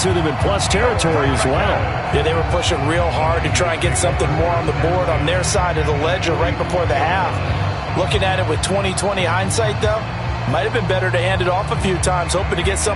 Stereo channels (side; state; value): both; identical; correlation 1.00